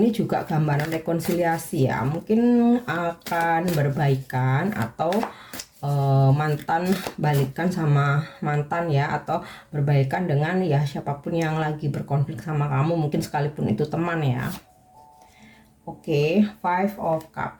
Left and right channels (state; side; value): identical; both; correlation 1.00